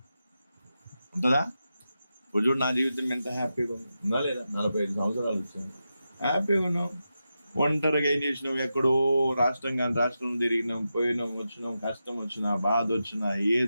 ఉంటుందా? ఇప్పుడు చూడు, నా జీవితం ఎంత హ్యాపీగా ఉందా లేదా? 45 సంవత్సరాలు వచ్చాను, హ్యాపీగా ఉన్నాం. ఒంటరిగా ఏం చేసినాం? ఎక్కడో రాష్ట్రం కానీ రాష్ట్రం తిరిగినాం, పోయినాం, వచ్చినాం, కష్టం వచ్చినా, బాధ వచ్చినా,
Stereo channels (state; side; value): inverted; both; correlation -0.90